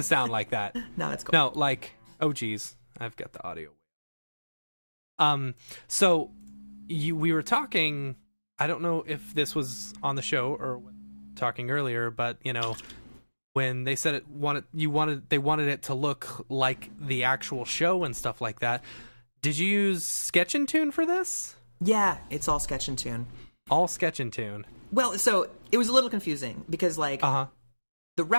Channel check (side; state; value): both; inverted; correlation -1.00